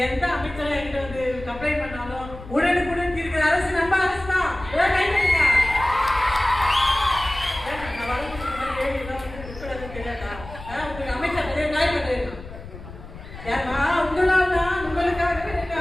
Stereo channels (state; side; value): noise; left; rumble, 14 dB below the sound